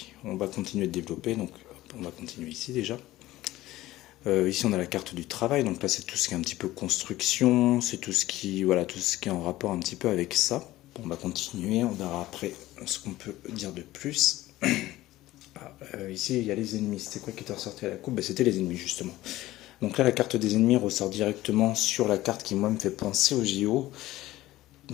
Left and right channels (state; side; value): quieter; right; 16.5 dB